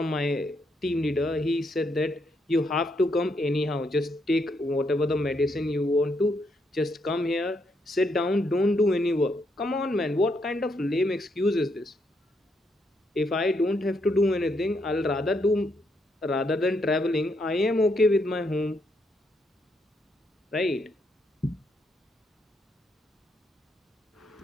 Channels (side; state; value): both; normal; correlation 0.77